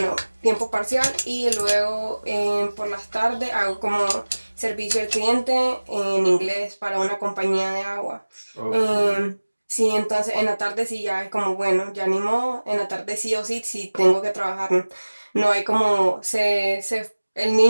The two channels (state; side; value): inverted; both; correlation -1.00